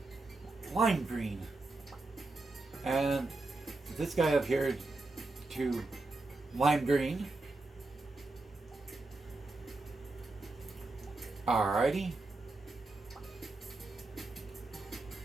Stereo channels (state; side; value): quieter; left; 3.2 dB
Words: lime green. And this guy up here to lime green. Alrighty.